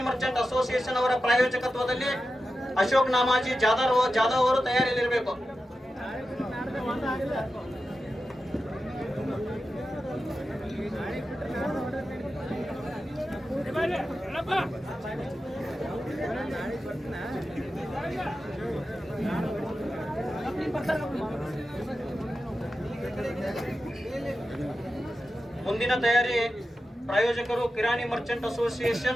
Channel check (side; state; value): both; normal; correlation 0.92